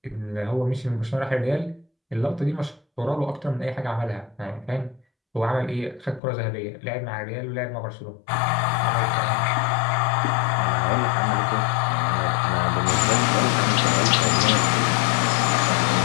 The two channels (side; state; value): right; drops out; at 6.2 s